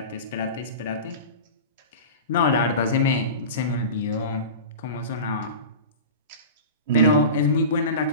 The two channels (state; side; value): inverted; both; correlation -0.31